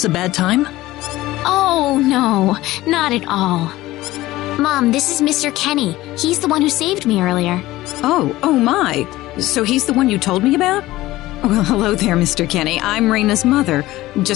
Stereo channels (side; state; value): right; quieter; 17.2 dB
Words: a bad time? Oh, no, not at all. Mom, this is Mr. Kenny. He's the one who saved me earlier. Oh my. So he's the one you told me about? Well, hello there, Mr. Kenny. I'm Reina's mother.